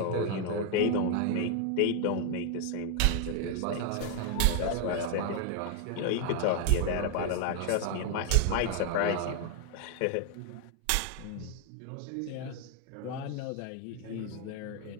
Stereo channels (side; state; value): both; different; correlation 0.00